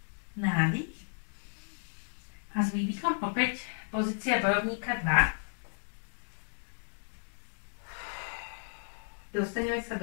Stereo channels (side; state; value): right; silent; digital silence